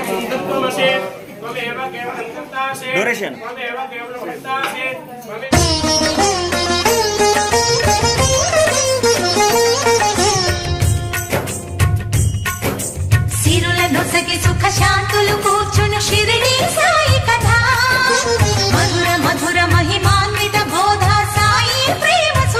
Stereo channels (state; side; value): identical; both; correlation 1.00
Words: త్వమేవ కేవలం కర్తాసే త్వమేవ కేవలం కర్తాసే నొసగి సుఖ శాంతులు కూర్చును షిరిడి సాయి కథ, మధుర మధుర మహిమాన్విత బోధ సాయి ప్రేమ